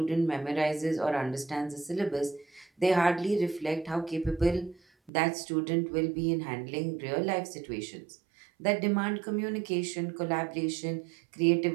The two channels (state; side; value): drops out; left; at 5.1 s